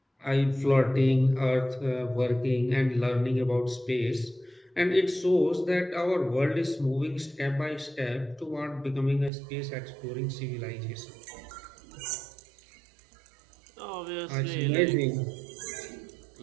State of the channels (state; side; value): drops out; left; at 9.3 s